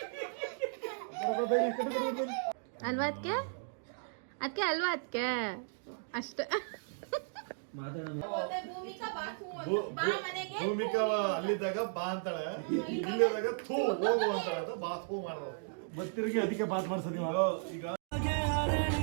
ಅಲ್ವಾ ಅದಕ್ಕೆ ಅದಕ್ಕೆ ಅಲ್ವಾ ಅದಕ್ಕೆ ಅಷ್ಟೇ. ಭೂಮಿಕಾ ಅಲ್ಲಿದ್ದಾಗ ಬಾ ಅಂತಾಳೆ, ಇಲ್ಲಿದ್ದಾಗ ಥೂ ಹೋಗು ಅಂತಾಳೆ. ಬಾ ಥೂ ಮಾಡೋದು ಗೊತ್ತಿರಿಗೆ ಅದಕ್ಕೆ ಬಾತ್ ಮಾಡ್ಸೋದು ಈಗ.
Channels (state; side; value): silent; left; digital silence